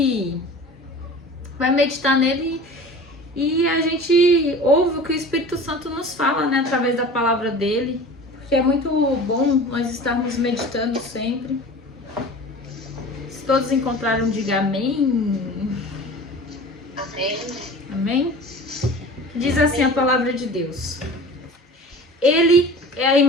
meditar nele, e a gente ouve o que o Espírito Santo nos fala, né, através da palavra dele, porque é muito bom nós estarmos meditando sempre. Se todos encontraram, diga amém. Amém. Amém? Diz assim a palavra de Deus: Ele é a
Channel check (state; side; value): normal; both; correlation 0.39